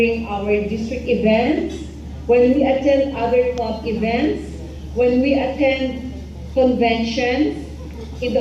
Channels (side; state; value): both; identical; correlation 1.00